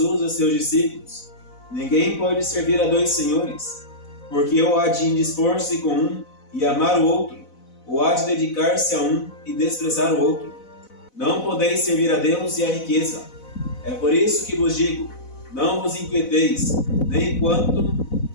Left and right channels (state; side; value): late; right; 4.0 ms